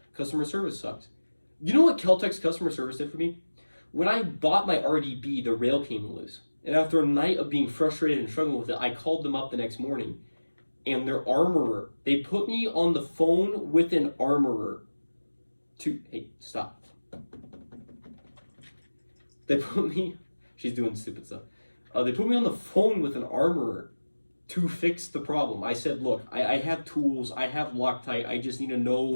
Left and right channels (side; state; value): both; inverted; correlation -1.00